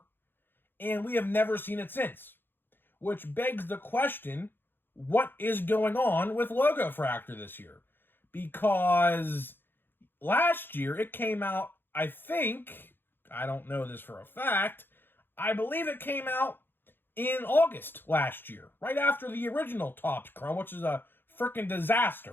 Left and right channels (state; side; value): late; right; 0.10 ms